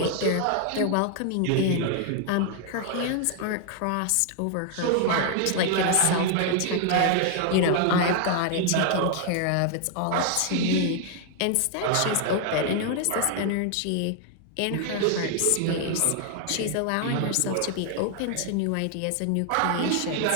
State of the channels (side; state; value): both; different; correlation 0.00